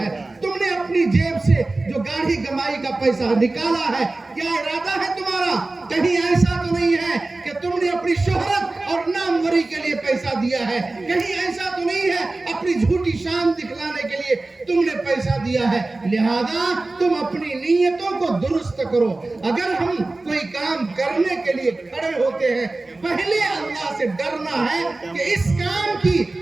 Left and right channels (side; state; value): left; quieter; 3.1 dB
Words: تم نے اپنی جیب سے جو گاڑی کمائی کا پیسہ نکالا ہے، کیا ارادہ ہے تمہارا؟ کہیں ایسا تو نہیں ہے کہ تم نے اپنی شہرت اور ناموری کے لیے پیسہ دیا ہے، کہیں ایسا تو نہیں ہے اپنی جھوٹی شان دکھلانے کے لیے تم نے پیسہ دیا ہے۔ لہذا تم اپنی نیتوں کو درست کرو۔ اگر ہم کوئی کام کرنے کے لیے کھڑے ہوتے ہیں پہلے اللہ سے ڈرنا ہے کہ اس کام کی